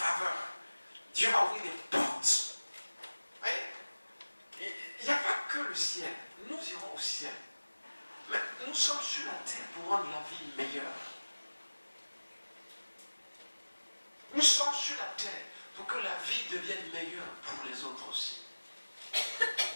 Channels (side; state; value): both; inverted; correlation -1.00